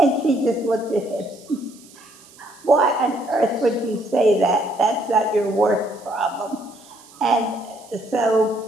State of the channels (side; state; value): right; noise; hiss, 24 dB below the sound